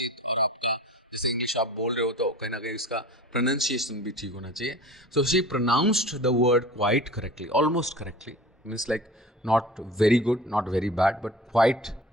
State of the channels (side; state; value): both; normal; correlation 0.40